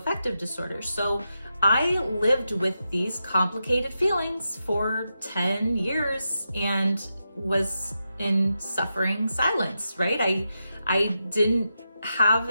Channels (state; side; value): inverted; both; correlation -0.88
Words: disorder. So I lived with these complicated feelings for 10 years and was in suffering silence, right? I didn't have